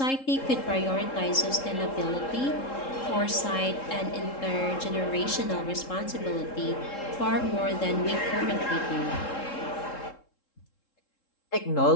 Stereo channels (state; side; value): late; right; 3.7 ms